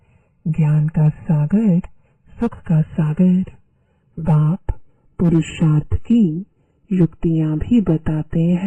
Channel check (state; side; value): identical; both; correlation 1.00